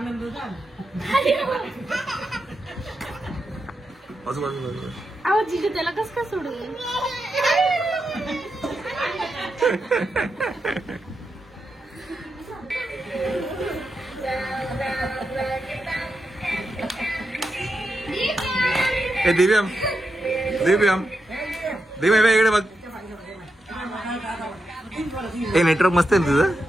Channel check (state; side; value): normal; both; correlation 0.86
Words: झाला अहो जिजू त्याला कस का सोडून दिव्यम इकडे बघ हे नेटवर्क मस्त आहे ना तुझं